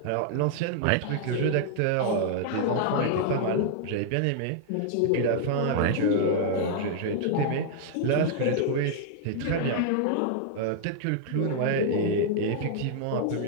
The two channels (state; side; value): different; both; correlation -0.01